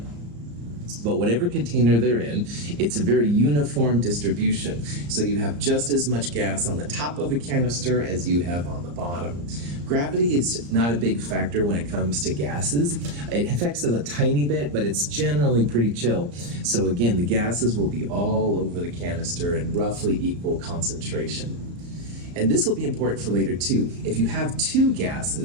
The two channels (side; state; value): left; late; 34 ms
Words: But whatever container they're in, it's a very uniform distribution. So you have just as much gas on the top of a canister as you have on the bottom. Gravity is not a big factor when it comes to gases. It affects it a tiny bit, but it's generally pretty chill. So again, the gases will be all over the canister in roughly equal concentration. And this will be important for later too. If you have 2